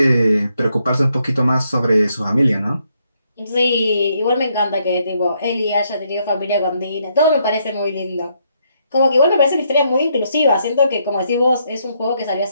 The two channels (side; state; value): both; inverted; correlation -0.75